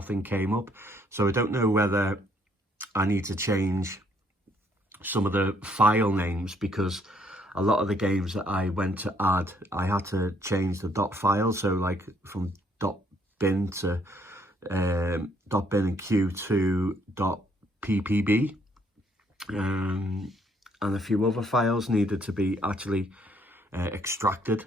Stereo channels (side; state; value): both; normal; correlation 0.67